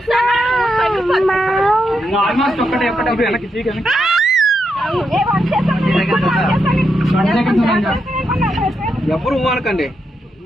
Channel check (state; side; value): normal; both; correlation 0.83